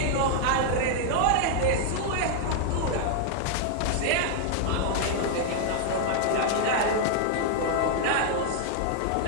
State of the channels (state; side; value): different; both; correlation 0.00